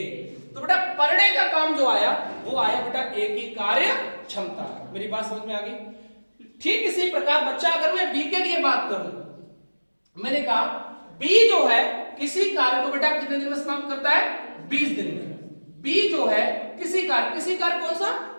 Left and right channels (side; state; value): both; inverted; correlation -1.00